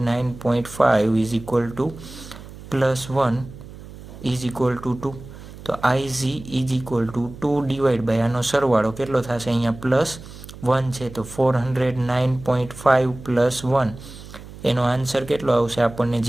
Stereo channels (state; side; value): noise; right; hum, 16 dB below the sound